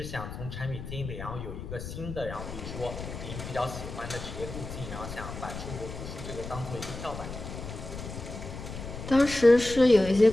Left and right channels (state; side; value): noise; left; rumble, 9 dB below the sound